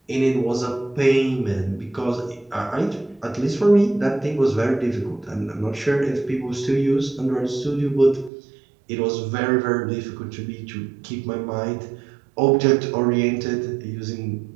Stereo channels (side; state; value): left; drops out; at 8.3 s